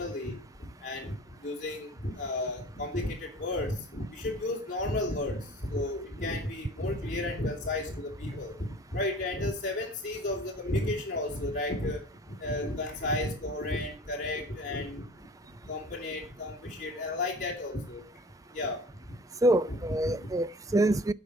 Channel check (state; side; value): normal; both; correlation 0.44